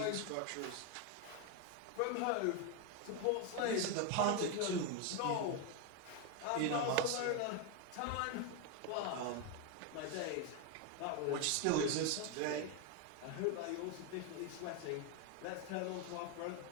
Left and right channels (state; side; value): different; both; correlation 0.02